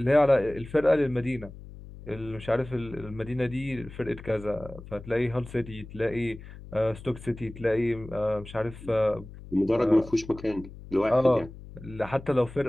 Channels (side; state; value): left; noise; hum, 16 dB below the sound